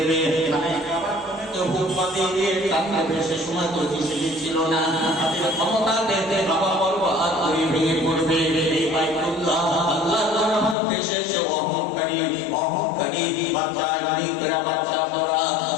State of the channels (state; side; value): drops out; right; at 10.8 s